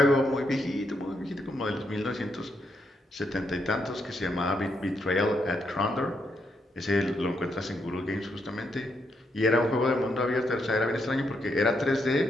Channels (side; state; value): both; normal; correlation 0.79